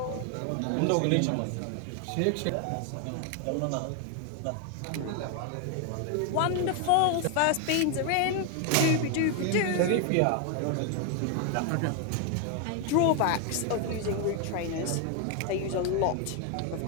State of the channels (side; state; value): both; different; correlation 0.01